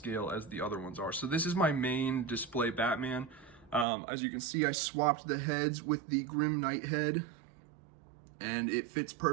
as the other ones are. So this is my main display Batman. As you can see, I swapped the heads with the Grim Knight head, and it fits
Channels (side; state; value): left; drops out; at 3.9 s